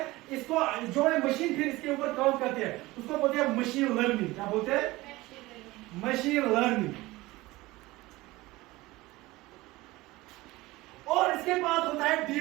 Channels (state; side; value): quieter; left; 19.8 dB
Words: इसको जो है मशीन फिर इसके ऊपर काम करती है, उसको बोलते हैं मशीन लर्निंग। क्या बोलते हैं? Machine learning. और इसके बाद होता है